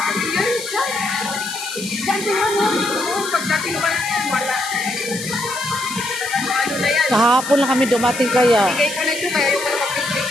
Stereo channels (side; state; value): left; noise; hiss, 9 dB below the sound